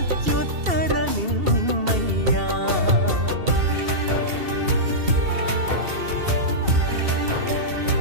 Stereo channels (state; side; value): late; left; 2.7 ms